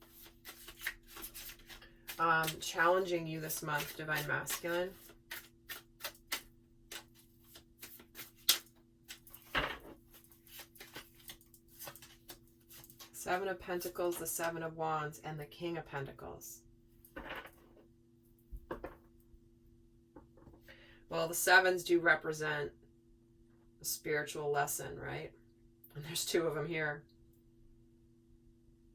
challenging you this month, Divine Masculine. Seven of Pentacles, the Seven of Wands, and the King of Pentacles. Well, the sevens do represent a spiritual lesson, right? And there's two of them here.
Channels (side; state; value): both; identical; correlation 1.00